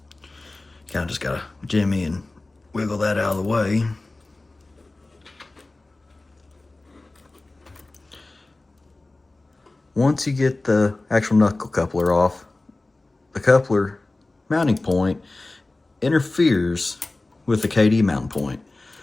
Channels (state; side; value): quieter; right; 3.1 dB